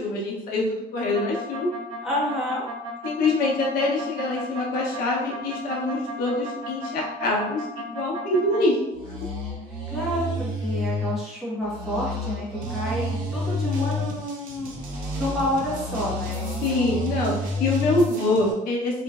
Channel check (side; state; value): both; normal; correlation 0.48